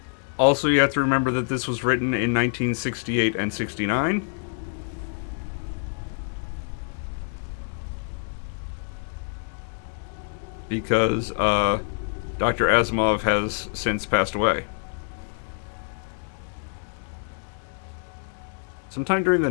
Also, you have to remember that this was written in 1968 and 69. Because Dr. Asimov has since passed away. Sometime during the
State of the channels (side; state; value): right; silent; 61 dB below the other